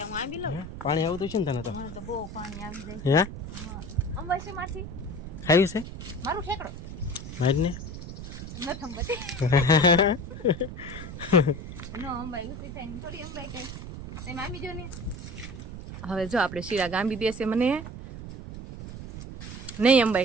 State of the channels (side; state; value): right; noise; rumble, 10 dB below the sound